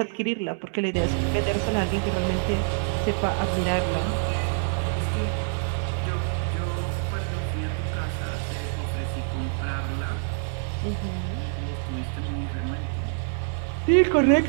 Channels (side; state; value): left; silent; digital silence